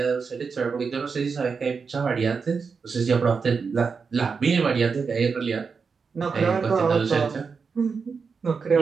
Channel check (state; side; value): quieter; left; 5.3 dB